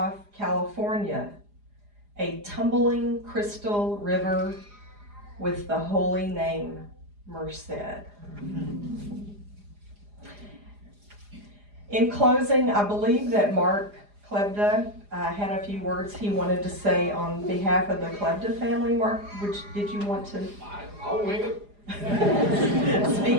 California, a tumbling crystal river with the holy name Merced. In closing, I believe that Mark Klebda had a few words he wanted to say on behalf of the Klebda family. Mark, did you want to I'll wing it.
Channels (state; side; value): late; left; 4.9 ms